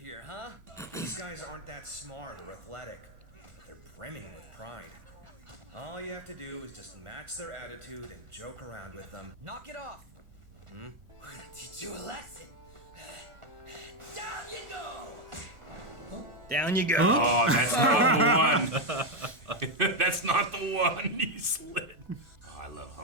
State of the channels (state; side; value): late; left; 1.5 ms